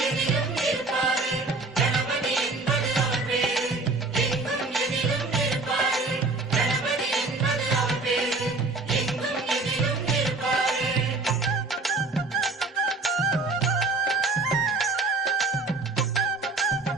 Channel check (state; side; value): quieter; left; 3.6 dB